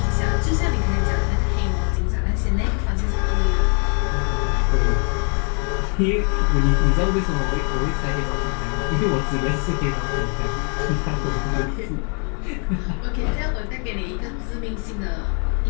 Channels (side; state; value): right; quieter; 39.7 dB